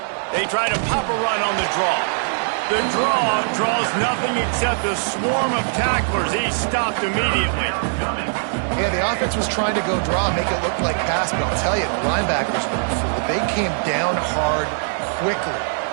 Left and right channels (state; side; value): silent; left; digital silence